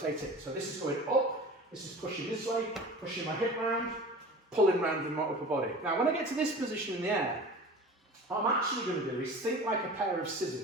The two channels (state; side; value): normal; both; correlation 0.38